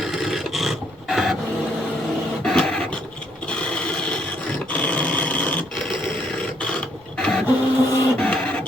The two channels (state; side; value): normal; both; correlation 0.70